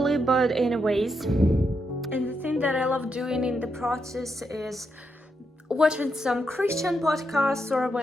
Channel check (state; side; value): normal; both; correlation 0.82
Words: but anyways. And the thing that I love doing in the process is watching some Christian podcasts or